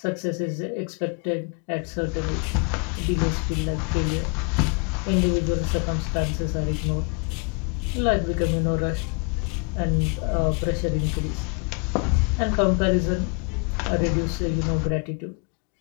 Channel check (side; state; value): right; quieter; 34.0 dB